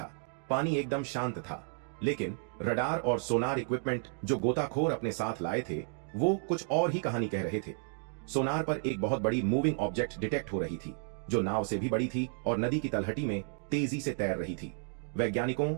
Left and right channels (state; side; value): silent; left; 56 dB below the other